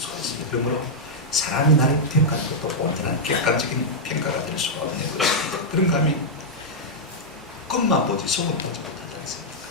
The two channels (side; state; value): both; normal; correlation -0.05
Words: 있습니다. 그러므로 사람이 나를 평가하는 것도 온전한 객관적인 평가가 될 수가 없는 것입니다. 그런가 하면 겉만 보지 속은 보지 못하지 않습니까?